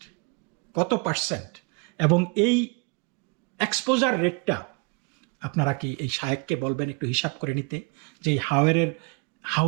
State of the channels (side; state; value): left; quieter; 30.8 dB